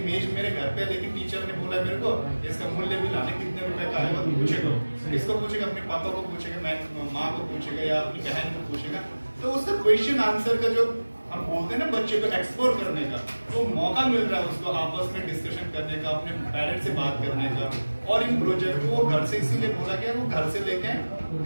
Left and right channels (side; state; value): both; inverted; correlation -1.00